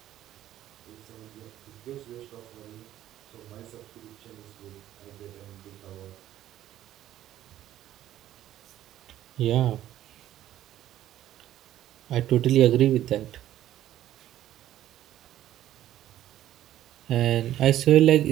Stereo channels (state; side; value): quieter; left; 12.8 dB